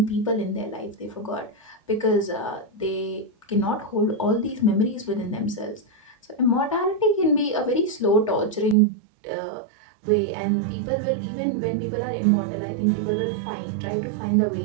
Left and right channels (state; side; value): drops out; left; at 8.8 s